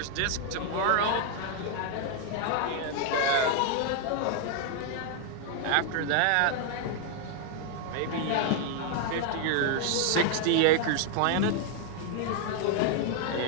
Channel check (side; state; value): both; different; correlation 0.00